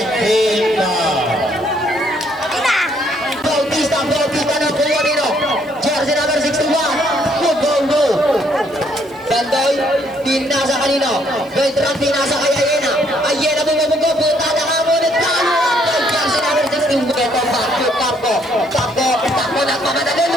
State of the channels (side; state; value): right; noise; hiss, 29 dB below the sound